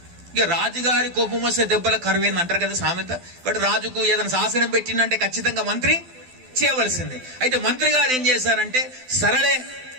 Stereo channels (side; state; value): left; late; 12 ms